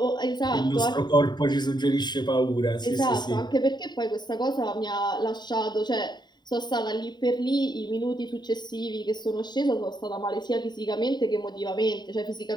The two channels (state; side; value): late; right; 0.21 ms